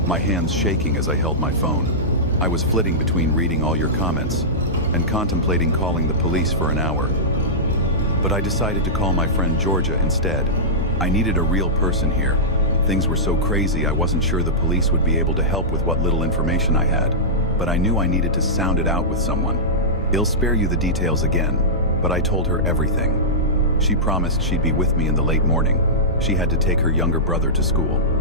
my hands shaking as I held my phone. I was flitting between reading all your comments and contemplating calling the police for an hour. But I decided to call my friend Georgia instead. I needed a real person here. Things were so crazy I wasn't sure the police would be able to help with what little information I had, but I knew I needed to sound it out with someone. I'll spare you the details again, but I told her everything. She promised she'd be with me in the late morning. She had to take her younger brother to school.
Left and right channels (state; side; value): normal; both; correlation -0.15